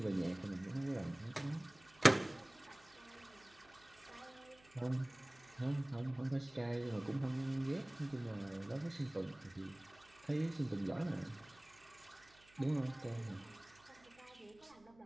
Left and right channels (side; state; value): right; noise; hum, 27 dB below the sound